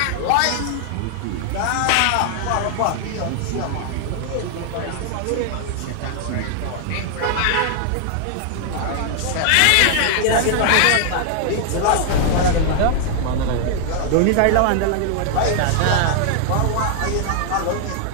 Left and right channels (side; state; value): both; different; correlation 0.00